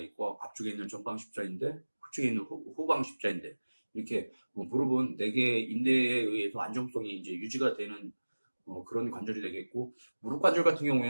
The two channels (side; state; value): both; inverted; correlation -1.00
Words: 앞쪽에 있는 전방 십자인대, 후측에 있는 후방 십자인대, 이렇게 무릎은 4개의 인대에 의해서 안정성이 이제 유지가 되는 그런 관절이 되겠고, 무릎 관절 같은